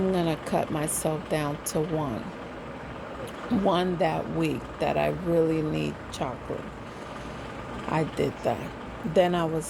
going to cut myself down to one that week that I really need chocolate. I did that. Then I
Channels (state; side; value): identical; both; correlation 1.00